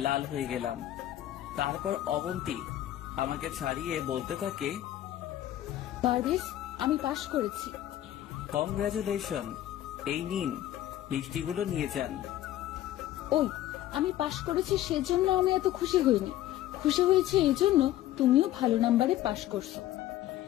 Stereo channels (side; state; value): right; quieter; 13.4 dB